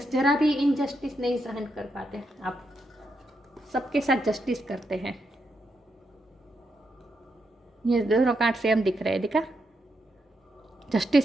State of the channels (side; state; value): both; normal; correlation 0.82